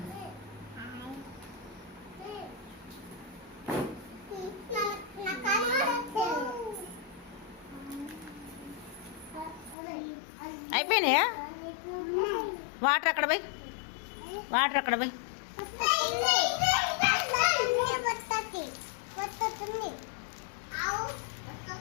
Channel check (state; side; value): drops out; right; at 9.8 s